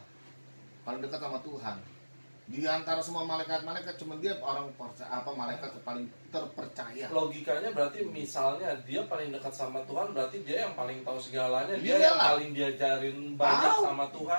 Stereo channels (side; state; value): both; inverted; correlation -1.00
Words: paling dekat sama Tuhan. Di antara semua malaikat-malaikat cuma dia orang malaikat paling terpercaya. Logikanya berarti misalnya dia paling dekat sama Tuhan, berarti dia yang paling tahu segalanya, dia Iyalah. yang paling diajarin banyak Tahu. sama